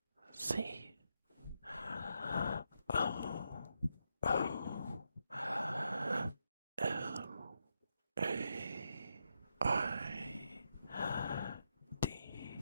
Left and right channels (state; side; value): inverted; both; correlation -0.83